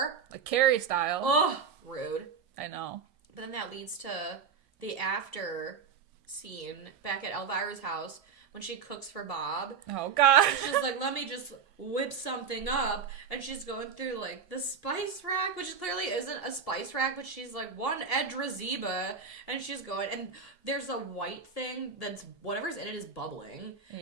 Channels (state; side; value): quieter; left; 6.1 dB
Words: Like Carrie style. Ugh, rude. I know. But then that leads to the after scene back at Elvira's house when she cooks for Bob. Oh, God. She's like, let me just whip something up. And she's going through, like, the spice rack, which clearly isn't a spice rack, but she's like, one Edrazeba. And she's going, and there's a white thing that's, whatever's in it is bubbling.